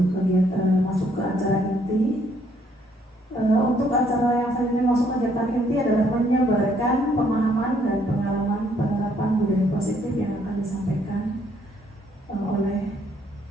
kegiatan masuk ke acara inti. Untuk acara yang selanjutnya masuk kegiatan inti adalah menyebarkan pemahaman dan pengalaman penerapan budaya positif yang akan disampaikan oleh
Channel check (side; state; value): both; normal; correlation 0.67